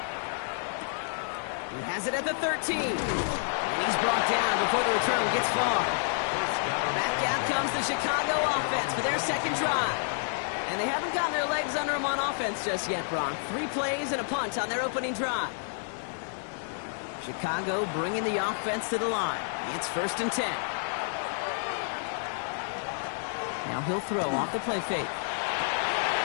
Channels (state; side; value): silent; right; 58 dB below the other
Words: He has it at the 13. And he's brought down before the return gets far. Back out comes the Chicago offense for their 2nd drive. And they haven't gotten their legs under them on offense just yet, Brock. 3 plays and a punt on their opening drive. Chicago bringing the offense to the line. It's 1st and 10. Now he'll throw off the play fake.